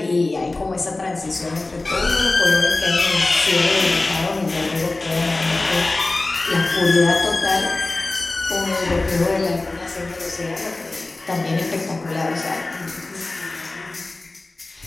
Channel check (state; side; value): quieter; right; 3.1 dB